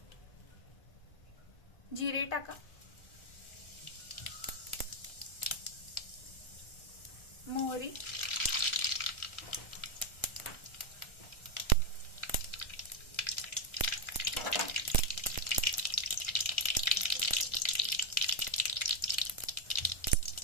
जिरे टाका, मोहरी,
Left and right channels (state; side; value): late; right; 1.3 ms